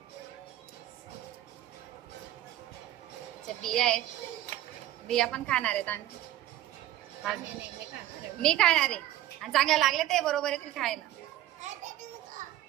बिया आहेत. बिया पण खाणार आहेत आणि मी खाणार आहे. आणि चांगले लागले ते बरोबर येतील खायला.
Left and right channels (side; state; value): left; quieter; 13.7 dB